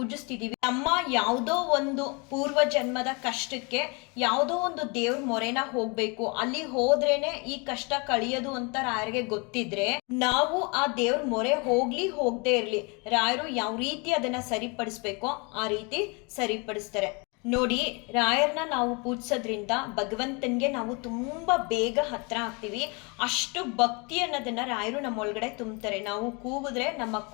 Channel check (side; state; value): right; quieter; 30.8 dB